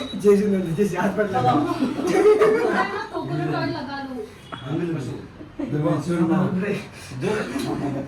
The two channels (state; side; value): identical; both; correlation 1.00